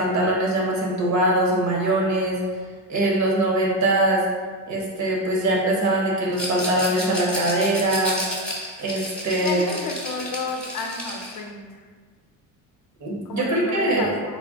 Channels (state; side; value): normal; both; correlation 0.12